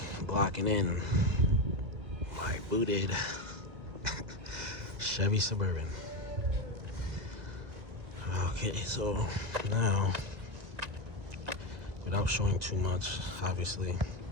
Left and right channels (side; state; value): left; late; 1.6 ms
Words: blocking in my booted Chevy Suburban. Okay, so now, without showing too much, obviously,